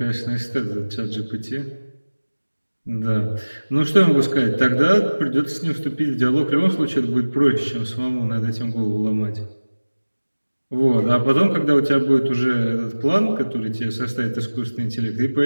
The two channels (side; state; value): both; inverted; correlation -1.00